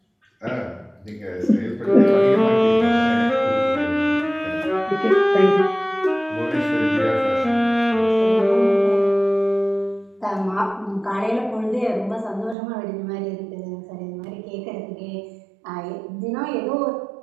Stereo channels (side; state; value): left; drops out; at 12.6 s